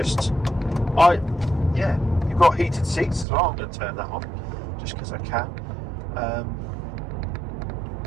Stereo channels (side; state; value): left; drops out; at 3.2 s